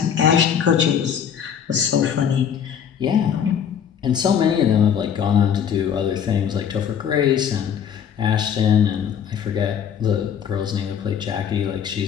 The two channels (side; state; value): right; quieter; 8.3 dB